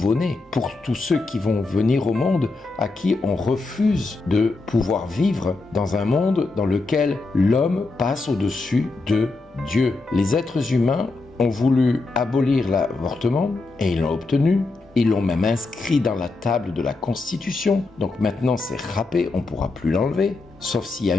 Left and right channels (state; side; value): quieter; right; 3.5 dB